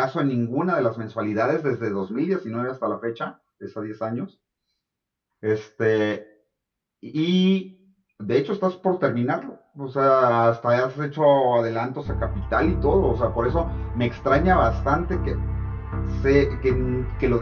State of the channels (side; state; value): both; identical; correlation 1.00